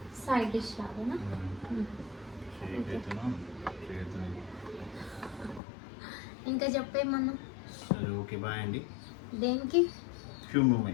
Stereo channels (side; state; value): right; drops out; at 5.6 s